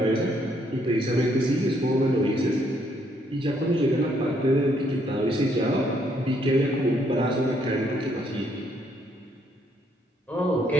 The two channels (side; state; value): both; normal; correlation 0.70